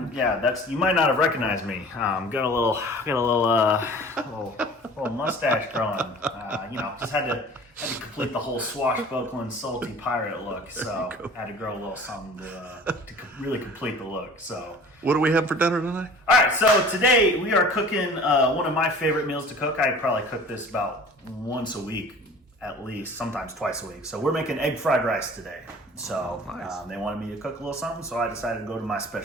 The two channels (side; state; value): both; normal; correlation 0.45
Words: That's, you might not have recognized me. Got a little mustache growing. Just had to complete the whole swashbuckling salty pirate look. So had to grow a little something to really complete the look. So what do we have for dinner tonight? All right, so today we are cooking one of my favorite meals to cook. I probably cook this about once a week, at least, sometimes twice a week. So we're making egg fried rice today. So nice. They wanted me to cook a little something, so I decided to go to my